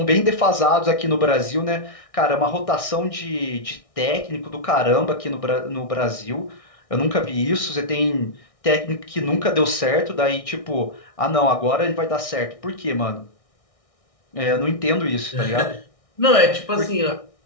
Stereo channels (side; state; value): right; late; 1.6 ms